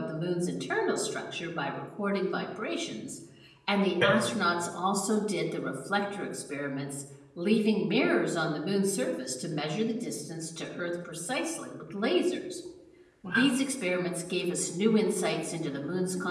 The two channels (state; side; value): identical; both; correlation 1.00